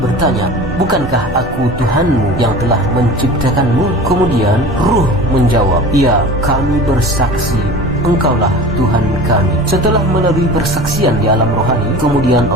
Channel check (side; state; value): both; normal; correlation 0.37